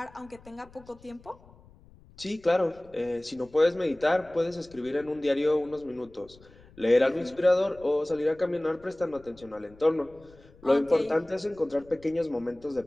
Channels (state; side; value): noise; left; rumble, 25 dB below the sound